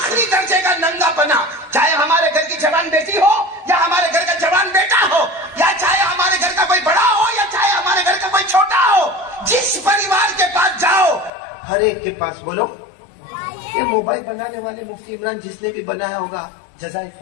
درجے کا ننگا پنا، چاہے ہمارے گھر کی جوان بیٹی ہو یا ہمارے گھر کا جوان بیٹا ہو، یا چاہے ہمارے گھر کا کوئی بڑا ہو یا چاہے ہمارے گھر کا کوئی چھوٹا ہو، جس پریوار کے پاس جاؤ ہر ایک کے پاس بولو یہ موبائل بنانے والے مفتی عمران جس نے بھی بنایا ہوگا جزائے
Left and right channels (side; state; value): right; drops out; at 11.3 s